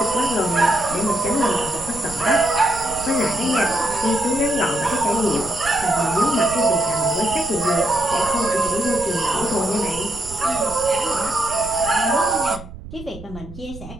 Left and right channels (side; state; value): right; noise; rumble, 15 dB below the sound